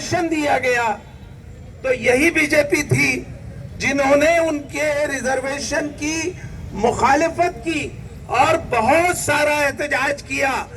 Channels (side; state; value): both; identical; correlation 1.00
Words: دیا گیا، تو یہی بی جے پی تھی جنہوں نے ان کے ریزرویشن کی مخالفت کی اور بہت سارا احتجاج کیا،